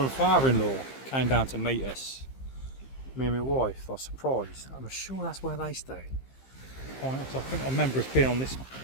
father-in-law came down to meet us. Me and my wife. I was surprised. I'm sure that's where they stayed. Pines. I think I remember us being on this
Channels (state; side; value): late; right; 15 ms